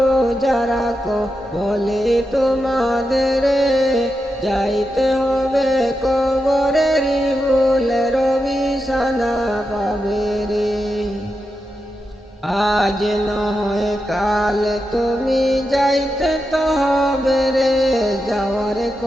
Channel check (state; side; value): normal; both; correlation 0.88